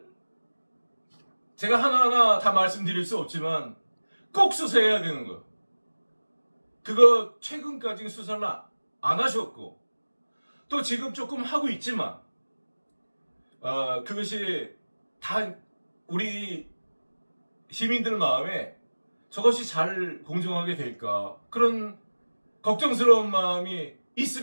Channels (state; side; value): inverted; both; correlation -1.00